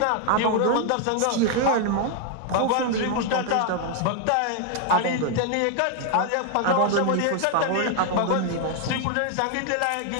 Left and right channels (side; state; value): both; different; correlation 0.00